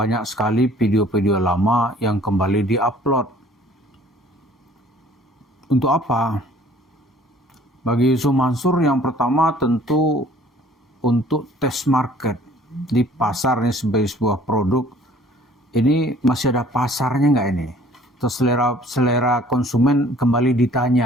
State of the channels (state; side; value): normal; both; correlation 0.54